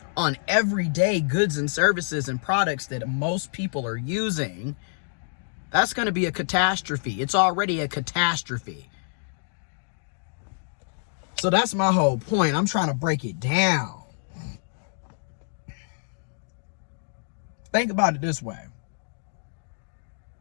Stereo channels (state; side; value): silent; right; digital silence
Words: on everyday goods and services and products that most people are using, that's going to be a catastrophe. It's already a catastrophe. So that's my whole point. I'm trying to break it down. Think about it this way.